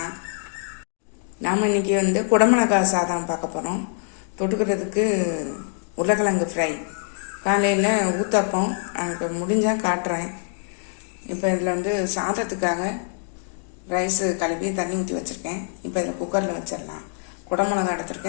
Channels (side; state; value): right; silent; digital silence